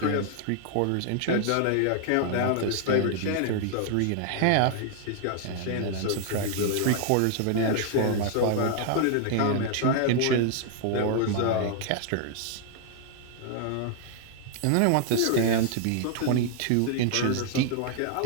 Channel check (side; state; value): both; different; correlation 0.00